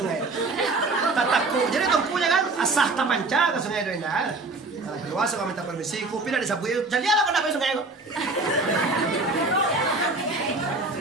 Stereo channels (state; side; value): quieter; left; 3.4 dB